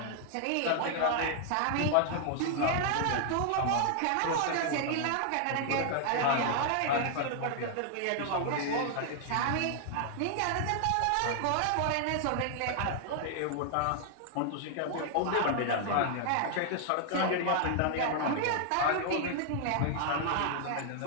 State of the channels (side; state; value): both; different; correlation 0.00